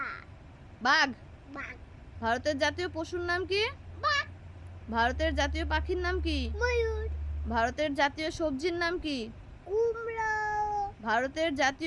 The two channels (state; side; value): identical; both; correlation 1.00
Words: বাঘ। বাঘ। ভারতের জাতীয় পশুর নাম কি? বাঘ। ভারতের জাতীয় পাখির নাম কি? ময়ূর। ভারতের জাতীয় সবজির নাম কি? কুমড়ো। ভারতের